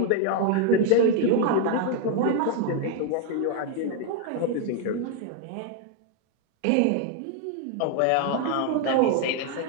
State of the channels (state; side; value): different; both; correlation 0.00